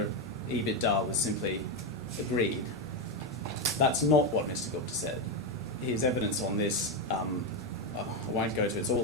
of EBITDA was simply agreed. That's not what Mr. Gupta said. His evidence on this, I won't go to, it's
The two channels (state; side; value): normal; both; correlation 0.09